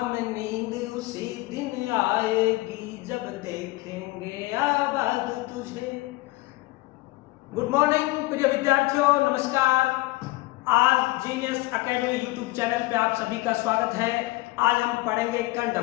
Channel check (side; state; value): right; quieter; 20.8 dB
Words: नींद उसी दिन आएगी जब देखेंगे आबाद तुझे। गुड मॉर्निंग प्रिय विद्यार्थियों, नमस्कार। आज जीनियस एकेडमी यूट्यूब चैनल पे आप सभी का स्वागत है। आज हम पढ़ेंगे करंट